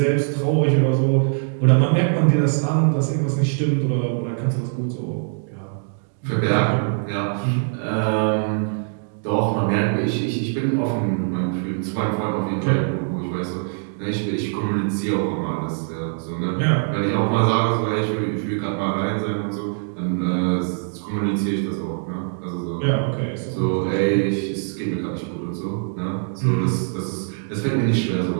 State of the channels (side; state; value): left; silent; 64 dB below the other